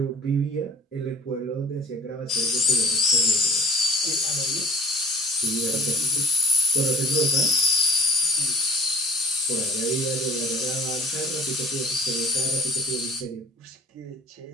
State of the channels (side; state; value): both; normal; correlation 0.48